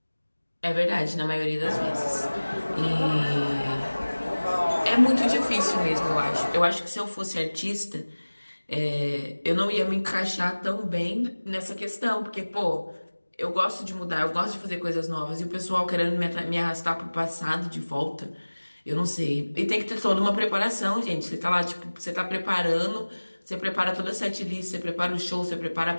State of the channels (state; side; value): inverted; both; correlation -1.00